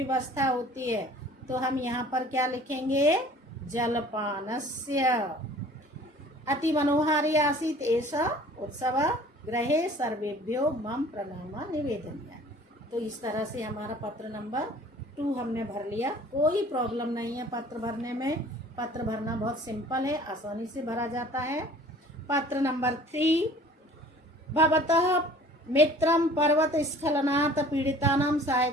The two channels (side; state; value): both; normal; correlation 0.49